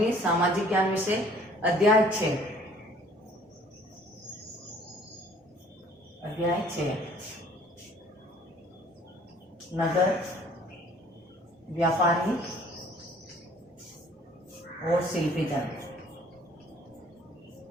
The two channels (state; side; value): normal; both; correlation 0.55